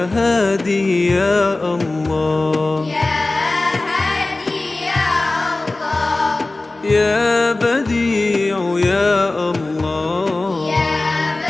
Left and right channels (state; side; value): quieter; right; 3.0 dB